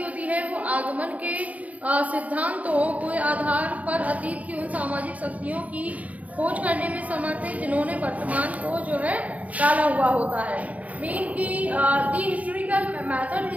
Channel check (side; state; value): left; late; 0.071 ms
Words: होती है वो आगमन के सिद्धांतों के आधार पर अतीत की उन सामाजिक शक्तियों की खोज करने में समर्थ है जिन्होंने वर्तमान को जो है डाला हुआ होता है। मीन की the historical method